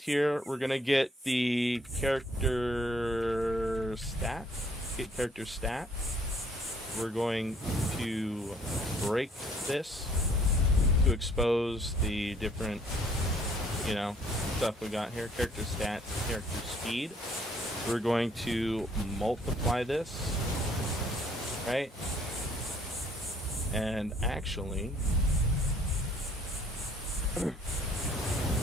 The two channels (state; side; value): normal; both; correlation 0.62